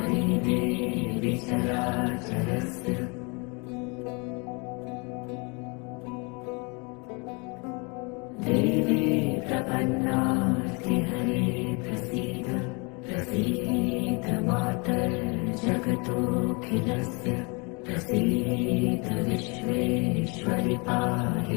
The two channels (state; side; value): quieter; right; 31.4 dB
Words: देवी चराचरस्य। प्रपन्नार्तिहरे प्रसीद प्रसीद मातर्जगतोऽखिलस्य प्रसीद विश्वेश्वरि